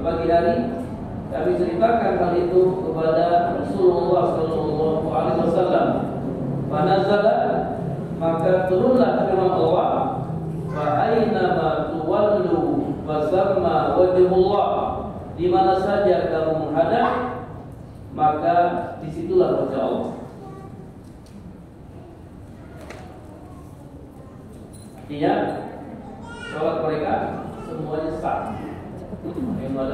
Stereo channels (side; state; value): both; identical; correlation 1.00